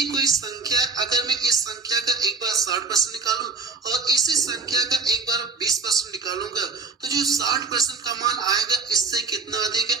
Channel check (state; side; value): quieter; left; 4.3 dB